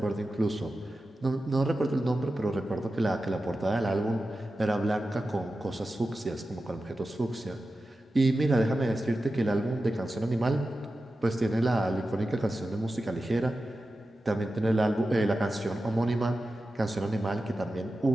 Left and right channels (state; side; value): normal; both; correlation 0.93